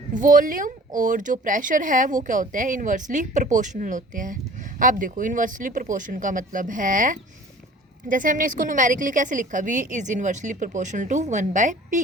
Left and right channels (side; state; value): both; normal; correlation 0.46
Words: वॉल्यूम और जो प्रेशर है वो क्या होते हैं, इन्वर्सली प्रोपोर्शनल होते हैं। आप देखो, इन्वर्सली प्रोपोर्शन का मतलब है, जैसे हमने इसको न्यूमेरिकली कैसे लिखा, V is inversely proportional to